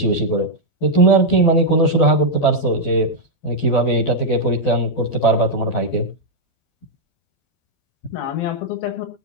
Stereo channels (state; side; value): late; right; 12 ms